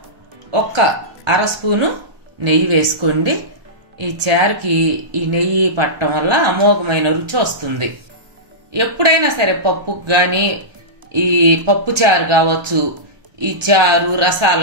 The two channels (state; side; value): late; left; 1.4 ms